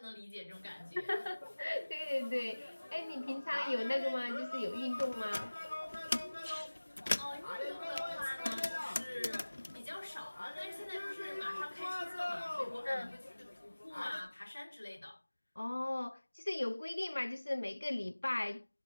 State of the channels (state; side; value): inverted; both; correlation -1.00